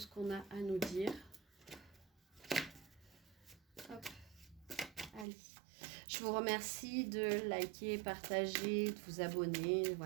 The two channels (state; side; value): drops out; left; at 5.2 s